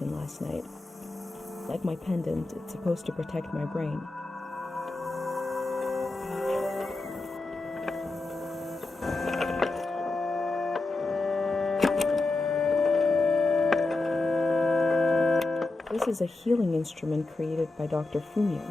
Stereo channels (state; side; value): quieter; right; 3.1 dB